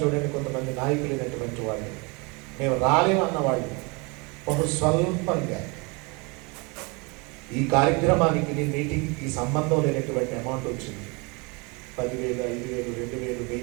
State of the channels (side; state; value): left; quieter; 29.1 dB